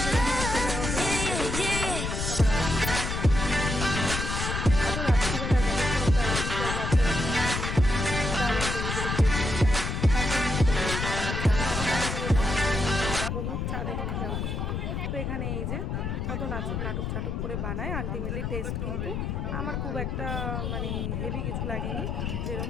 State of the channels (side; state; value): left; noise; rumble, 2 dB below the sound